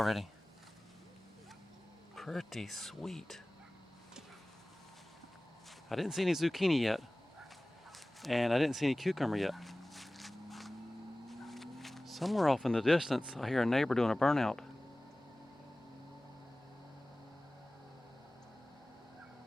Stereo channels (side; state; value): both; normal; correlation 0.98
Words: Pretty sweet. I didn't see any zucchini yet, and I didn't see any cucumber yet. Somewhere off in the distance, I hear a neighbor doing a burnout.